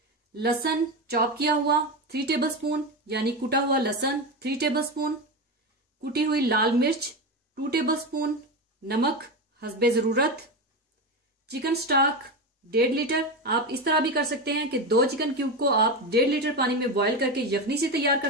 लहसुन चॉप किया हुआ 3 टेबलस्पून, यानी कुटा हुआ लहसुन 3 टेबलस्पून, कुटी हुई लाल मिर्च 2 टेबलस्पून, नमक हस्बे जरूरत, चिकन स्टॉक 1.5 लीटर। आप इस तरह भी कर सकते हैं कि 2 चिकन क्यूब को आप 1.5 लीटर पानी में बॉयल करके यखनी से तैयार कर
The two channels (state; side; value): normal; both; correlation 0.18